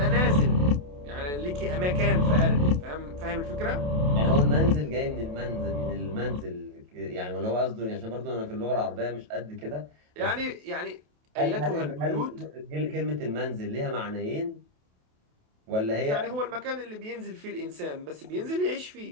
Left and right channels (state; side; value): late; left; 28 ms